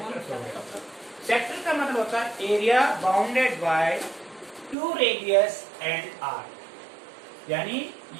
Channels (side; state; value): left; drops out; at 4.8 s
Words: हो गया. सेक्टर का मतलब होता है area bounded by 2 radius and r. यानी